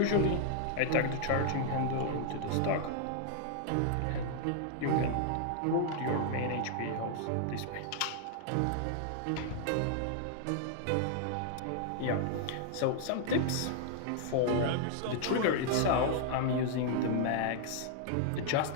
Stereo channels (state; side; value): different; both; correlation -0.01